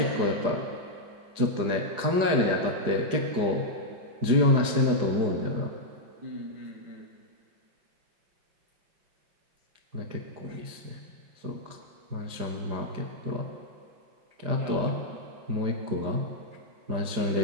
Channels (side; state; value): left; late; 5.0 ms